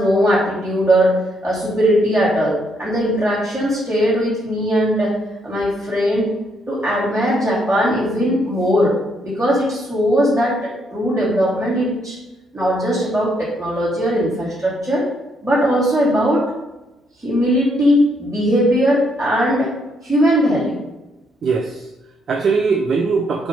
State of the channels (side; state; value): both; normal; correlation 0.73